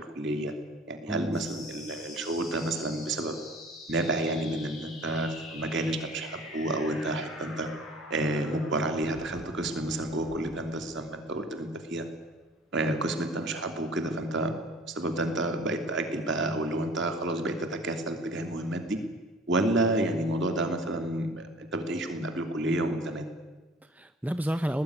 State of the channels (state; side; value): normal; both; correlation 0.48